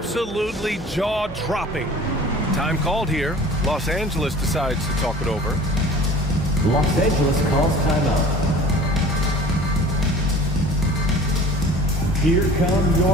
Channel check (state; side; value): noise; right; hum, 16 dB below the sound